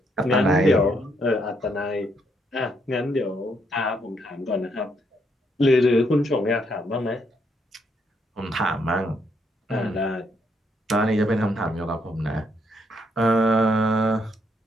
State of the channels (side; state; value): both; normal; correlation 0.74